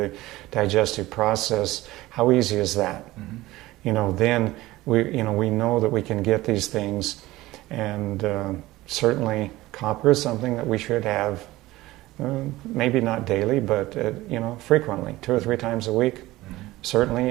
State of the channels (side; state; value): left; quieter; 17.8 dB